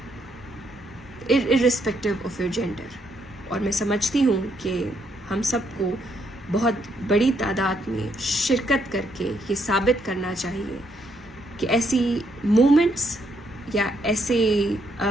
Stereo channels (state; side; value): normal; both; correlation 0.74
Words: irrespective of your gender. اور میں سمجھتی ہوں کہ ہم سب کو بہت بڑی تعداد میں شرکت کر کے یہ ثابت کرنا چاہیے کہ ایسی موومنٹس یا ایسے